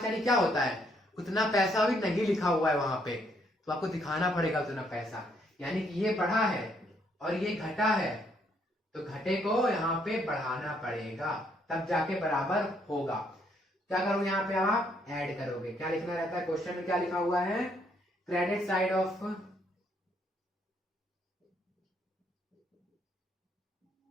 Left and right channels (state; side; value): normal; both; correlation 0.71